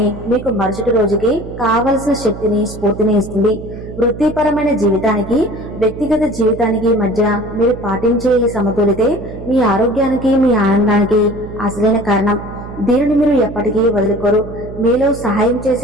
మీకు మరుసటి రోజుకి కావలసిన శక్తిని, స్ఫూర్తిని ఇస్తుంది. వృత్తిపరమైన జీవితానికి, వ్యక్తిగత జీవితానికి మధ్య మీరు పాటించే ఈ సమతులితే మీ ఆరోగ్యానికి, మీ ఆనందానికి అసలైన కారణం. దీనిని మీరు ఎప్పటికీ వదులుకోరు. మీలో సహాయం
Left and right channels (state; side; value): noise; right; hum, 12 dB below the sound